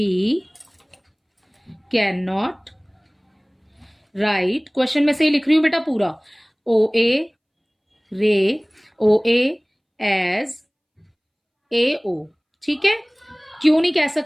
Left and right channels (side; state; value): both; identical; correlation 1.00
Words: can not write, question में से ही लिख रही हूं बेटा पूरा, OA रे OA एज AO, ठीक है। क्यों नहीं कह